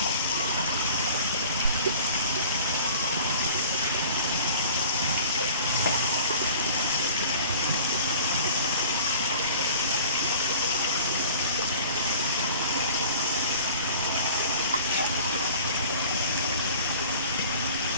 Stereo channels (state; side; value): inverted; both; correlation -0.45